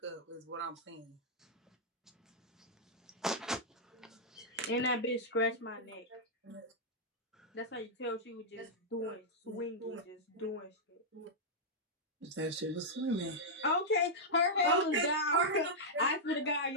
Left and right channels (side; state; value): both; normal; correlation -0.08